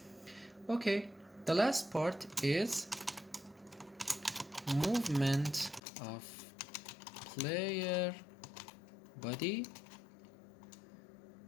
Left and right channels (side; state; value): right; drops out; at 5.8 s